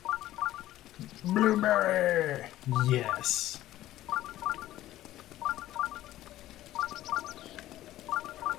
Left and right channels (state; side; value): quieter; right; 14.5 dB